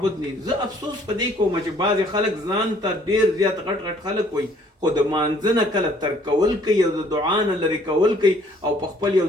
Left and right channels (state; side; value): normal; both; correlation 0.60